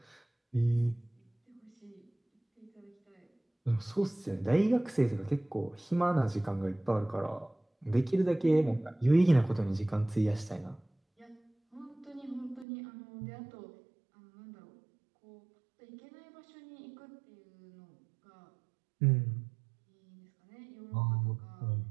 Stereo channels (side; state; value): left; drops out; at 12.7 s